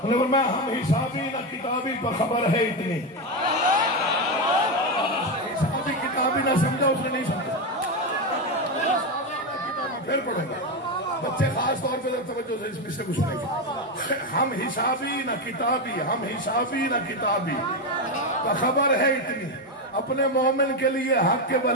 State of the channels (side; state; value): both; normal; correlation 0.11